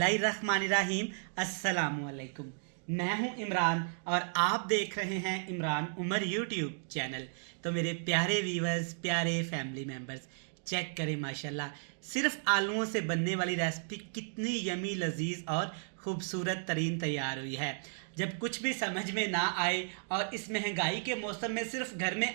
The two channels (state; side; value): silent; left; digital silence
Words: अस्सलामुअलैकुम। मैं हूं इमरान और आप देख रहे हैं इमरान उमर यूट्यूब चैनल। तो मेरे प्यारे व्यूवर्स, प्यारे फैमिली मेम्बर्स, चेक करें माशाल्लाह सिर्फ आलूओं से बनने वाली रेसिपी कितनी यमी, लजीज और खूबसूरत तरीन तैयार हुई है। जब कुछ भी समझ में ना आए और इस महंगाई के मौसम में सिर्फ घर